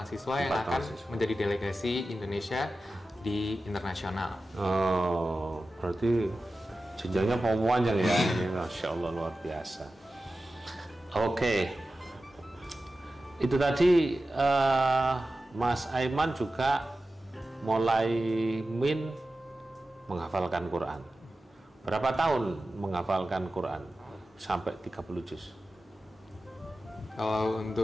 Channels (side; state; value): both; normal; correlation 0.94